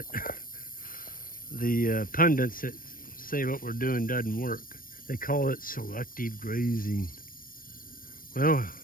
The pundits that say what we're doing doesn't work, they call it selective grazing. Well,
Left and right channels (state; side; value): late; right; 0.41 ms